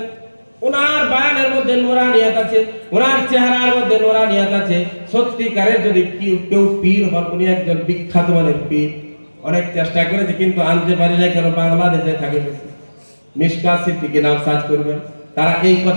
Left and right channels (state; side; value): inverted; both; correlation -1.00